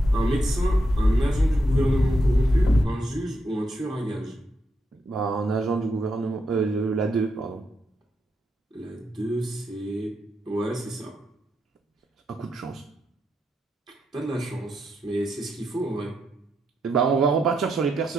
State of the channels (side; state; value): both; normal; correlation 0.81